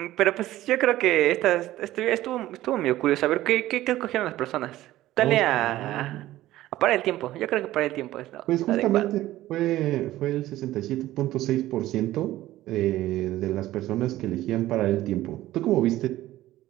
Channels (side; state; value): left; quieter; 15.3 dB